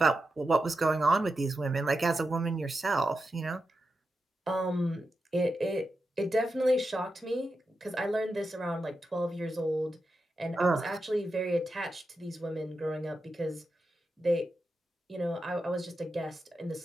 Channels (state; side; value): normal; both; correlation 0.89